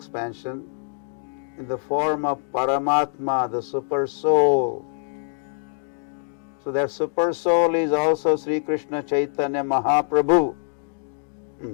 in the form of Paramatma, the Super Soul. So that Super Soul is also Sri Krishna Chaitanya Mahaprabhu.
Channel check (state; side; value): silent; right; digital silence